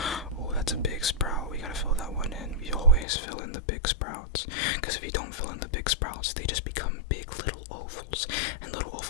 that's a big sprout. We gotta fill that one in. We always fill in the big sprouts, because if you don't fill in the big sprouts, they just become big little ovals, and little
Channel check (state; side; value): drops out; right; at 3.1 s